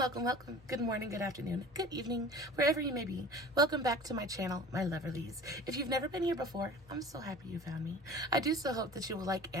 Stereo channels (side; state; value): both; normal; correlation 0.41